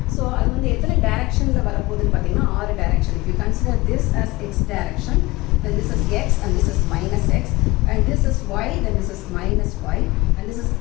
ஸோ அது எத்தனை டைரக்ஷனில் வரப்போகுதுன்னு பார்த்தீங்கன்னா 6 direction. If you consider this as x direction, then this is x and this is minus x, and this is y, then this is minus y, and this is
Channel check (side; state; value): right; quieter; 21.4 dB